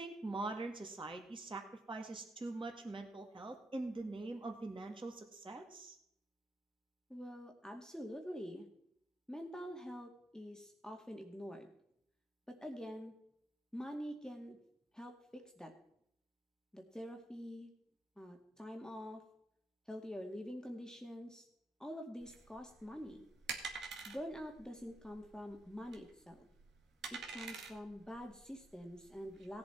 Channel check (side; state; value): both; normal; correlation 0.83